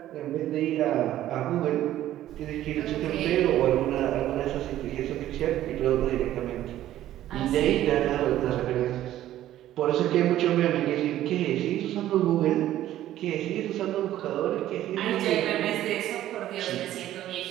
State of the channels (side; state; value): left; quieter; 13.2 dB